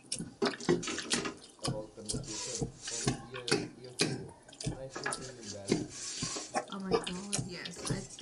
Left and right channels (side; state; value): both; identical; correlation 1.00